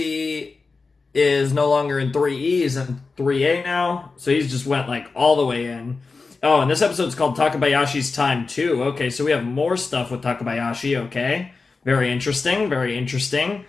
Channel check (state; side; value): quieter; right; 4.2 dB